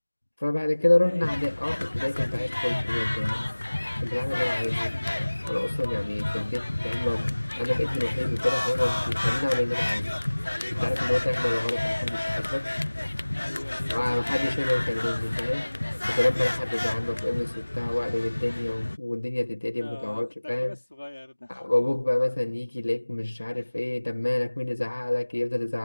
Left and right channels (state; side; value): inverted; both; correlation -1.00